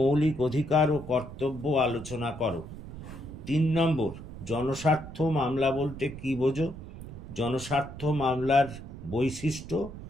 অধিকার ও কর্তব্য আলোচনা করো। 3 নম্বর, জনস্বার্থ মামলা বলতে কী বোঝো? জনস্বার্থ মামলার বৈশিষ্ট্য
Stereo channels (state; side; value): noise; right; rumble, 12 dB below the sound